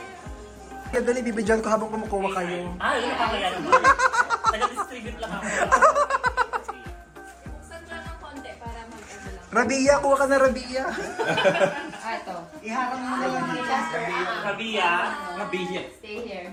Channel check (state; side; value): identical; both; correlation 1.00